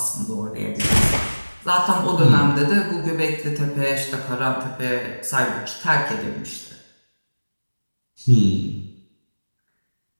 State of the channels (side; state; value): both; inverted; correlation -1.00